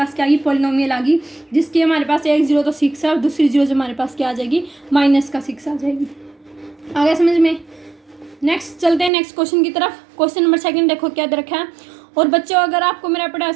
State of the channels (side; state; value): left; drops out; at 9.1 s